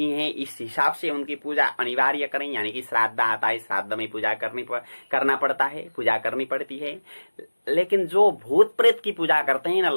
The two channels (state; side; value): inverted; both; correlation -1.00